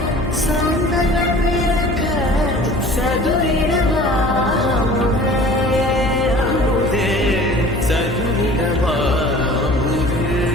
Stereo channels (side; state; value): left; noise; hum, 6 dB below the sound